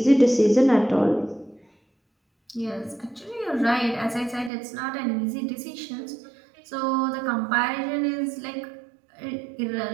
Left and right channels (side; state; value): left; drops out; at 4.5 s